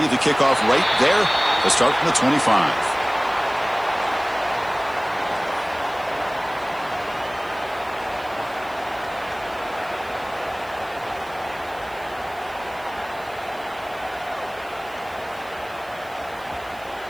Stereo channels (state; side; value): noise; right; hiss, 24 dB below the sound